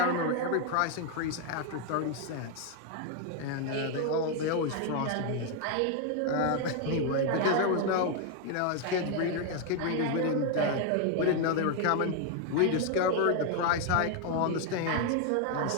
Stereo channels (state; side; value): different; both; correlation 0.00